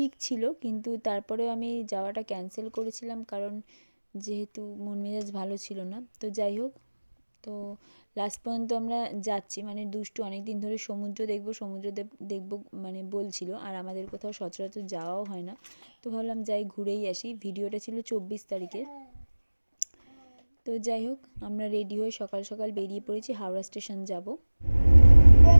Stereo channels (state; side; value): inverted; both; correlation -1.00